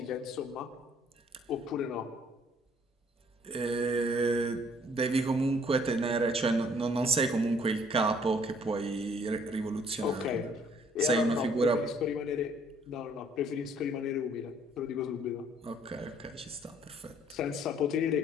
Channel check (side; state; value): both; normal; correlation 0.61